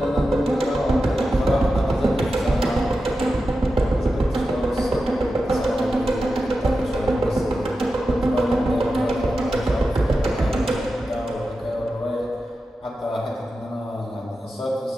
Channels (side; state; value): both; normal; correlation 0.91